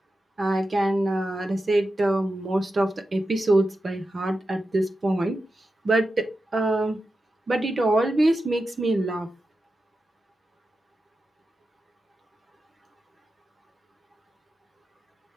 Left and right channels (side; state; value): both; normal; correlation 0.91